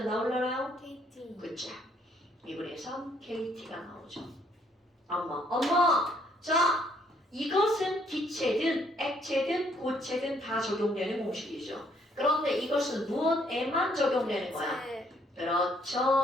나올라나요? KT. 그쵸. 2분의 3 KT가 나오죠. 엄마. 자, 이것은 기체든 액체든 고체든 다 적용되는 공식이죠. 그런데 이것은 무엇에만 적용되는 거야?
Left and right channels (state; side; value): normal; both; correlation 0.67